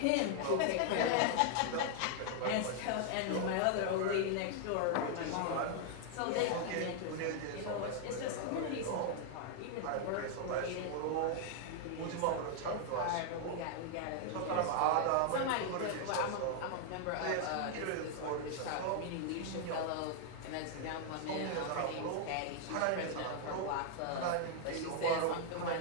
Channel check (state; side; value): different; both; correlation 0.00